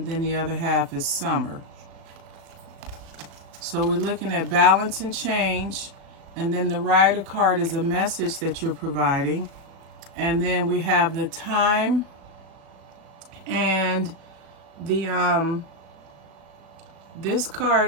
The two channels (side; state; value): left; late; 36 ms